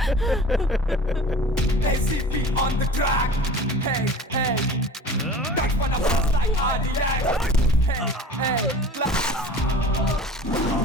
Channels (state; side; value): normal; both; correlation 0.41